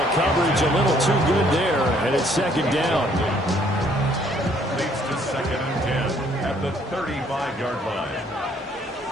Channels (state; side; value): normal; both; correlation 0.63